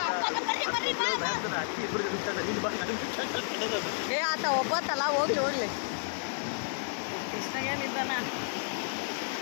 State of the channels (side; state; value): right; silent; 57 dB below the other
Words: ಆತ ಒಬ್ಬತ್ತಲ್ಲ, ಹೋಗ್ಲಿ ಹೋಗ್ಲಿ. ಕೃಷ್ಣಗೇನಿದ್ದಾನ